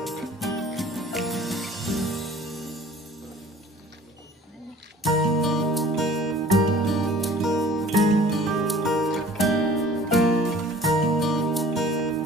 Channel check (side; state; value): both; normal; correlation 0.49